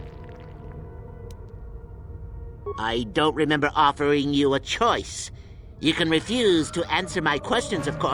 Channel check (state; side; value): identical; both; correlation 1.00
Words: I don't remember offering you a choice. You can refuse to answer my questions, of